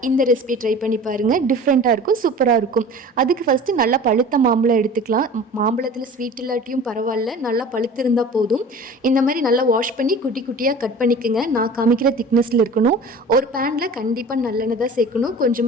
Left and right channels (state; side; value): normal; both; correlation 0.41